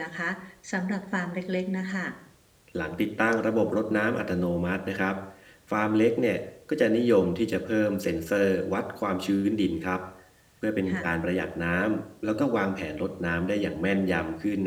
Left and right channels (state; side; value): identical; both; correlation 1.00